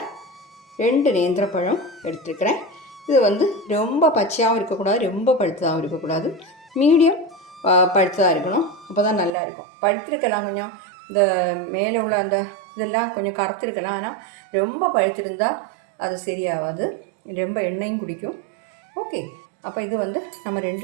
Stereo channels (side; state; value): left; drops out; at 9.3 s